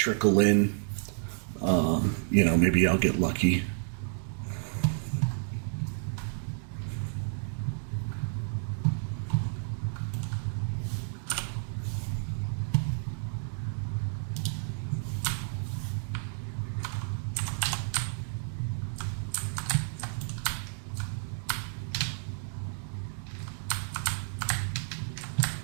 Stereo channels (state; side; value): silent; left; digital silence